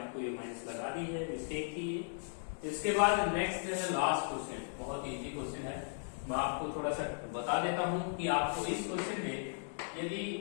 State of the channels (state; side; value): silent; right; digital silence